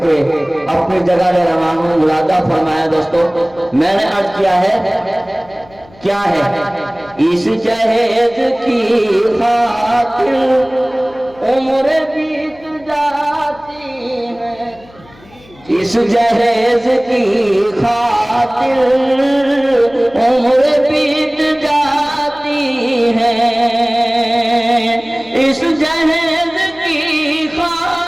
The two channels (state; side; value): noise; left; hum, 25 dB below the sound